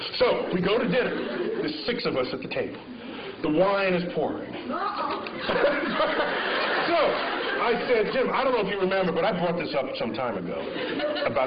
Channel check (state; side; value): identical; both; correlation 1.00